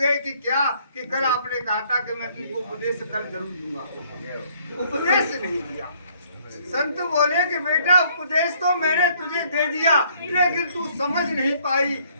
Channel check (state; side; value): inverted; both; correlation -0.63